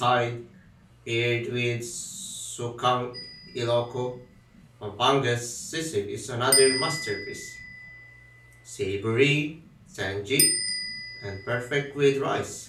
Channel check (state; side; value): identical; both; correlation 1.00